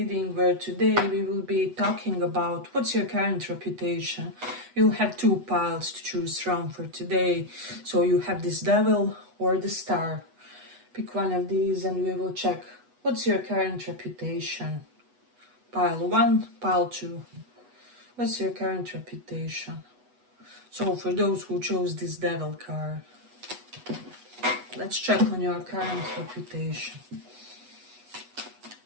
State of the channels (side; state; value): left; late; 8.1 ms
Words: where today we will be talking about what's your current reputation. You'll have two piles to choose from for today. So you have this devil or the star. Pick one of these and we will check what's your current reputation. Pile 1, pile 2. What's your current reputation? So for those who chose this devil card, let's check on your current reputation.